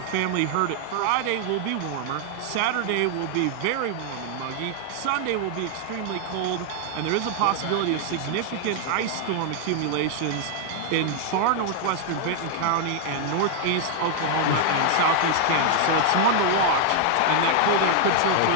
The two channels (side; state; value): both; different; correlation 0.00